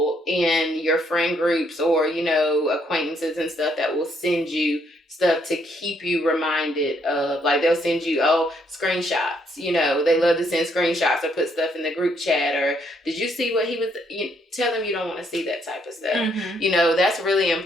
in your friend groups or, you know, acquaintances and stuff that will send you stuff to keep you reminded of, like, they'll send you screenshots, you know, they love to send screenshots or put stuff in the group chat, or did you see what he was, you tell them you don't want to see that type of stuff. You know, that's really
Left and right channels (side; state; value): both; normal; correlation 0.71